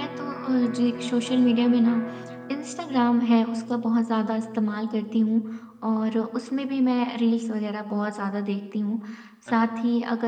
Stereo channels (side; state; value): both; identical; correlation 1.00